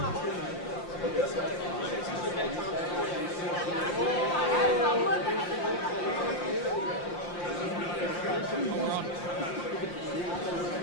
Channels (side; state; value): right; late; 5.7 ms